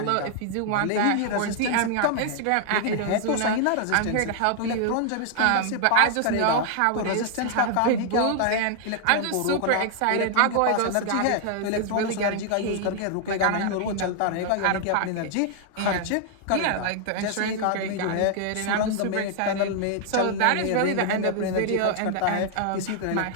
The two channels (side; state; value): both; different; correlation 0.00